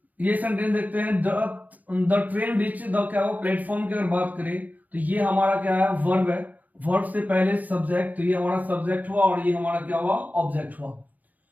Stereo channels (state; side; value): late; left; 0.079 ms